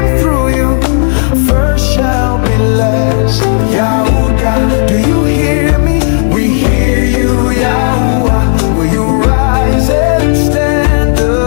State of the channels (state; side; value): silent; right; 60 dB below the other